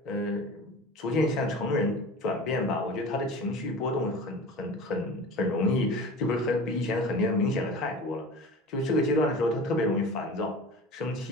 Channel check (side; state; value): both; normal; correlation 0.36